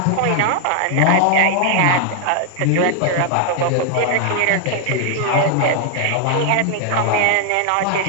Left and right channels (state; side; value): different; both; correlation 0.00